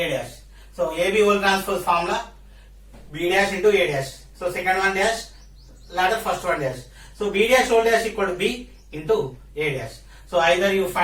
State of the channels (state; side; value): identical; both; correlation 1.00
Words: dash. So, AB whole transpose formula, B dash into A dash. So, second one dash, latter first one dash. So, B dash whole dash equal to B into A dash. So, either you